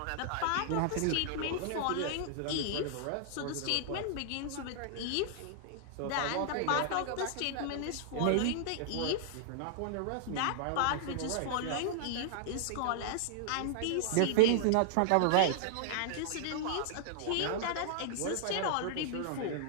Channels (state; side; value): different; both; correlation 0.00